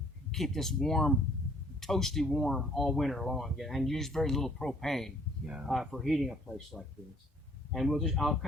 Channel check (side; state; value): both; normal; correlation 0.60